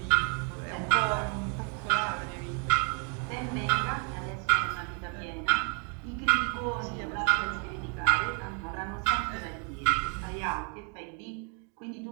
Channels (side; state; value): left; quieter; 35.5 dB